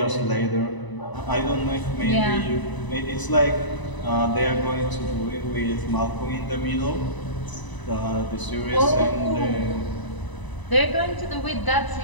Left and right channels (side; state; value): right; late; 1.0 ms